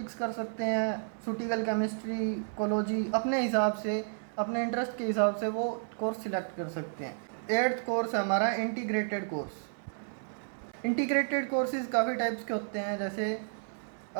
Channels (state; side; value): silent; left; 57 dB below the other